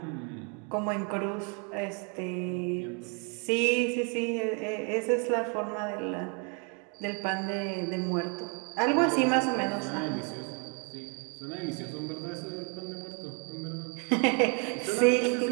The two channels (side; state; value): left; quieter; 37.0 dB